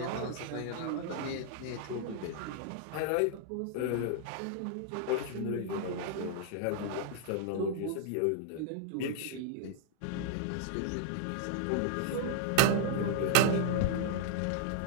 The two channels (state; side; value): different; both; correlation -0.01